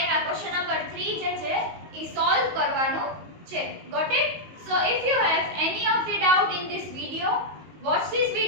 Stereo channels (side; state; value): left; late; 19 ms